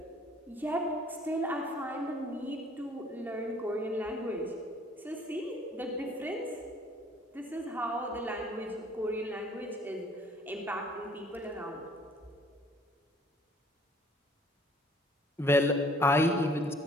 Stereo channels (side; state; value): both; normal; correlation 0.57